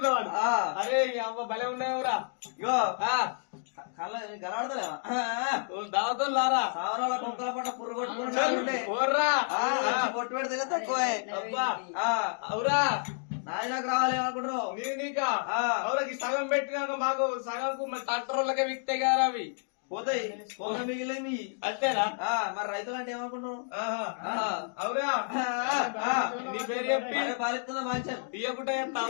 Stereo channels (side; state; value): right; silent; digital silence